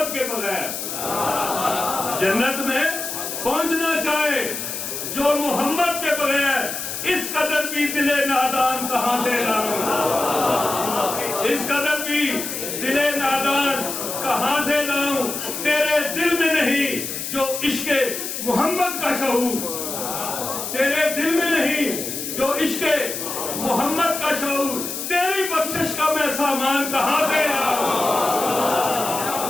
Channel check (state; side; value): noise; left; hiss, 5 dB below the sound